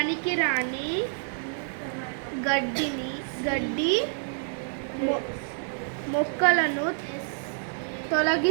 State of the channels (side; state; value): left; silent; 59 dB below the other